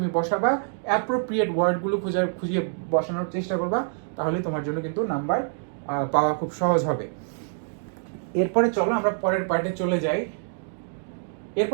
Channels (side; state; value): left; silent; digital silence